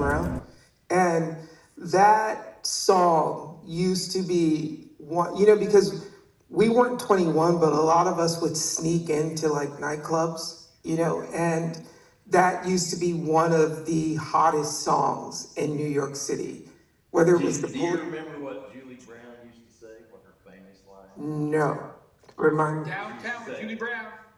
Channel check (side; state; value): both; identical; correlation 1.00